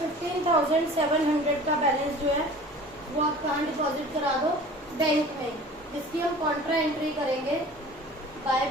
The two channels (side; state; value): both; normal; correlation 0.43